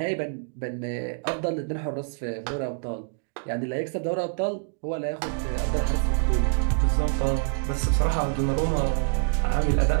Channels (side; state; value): left; silent; digital silence